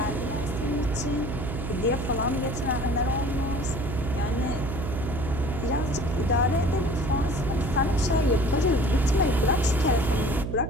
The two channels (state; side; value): noise; right; hum, 4 dB below the sound